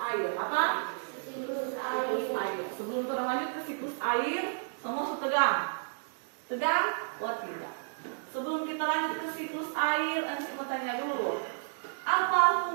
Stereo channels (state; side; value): silent; left; digital silence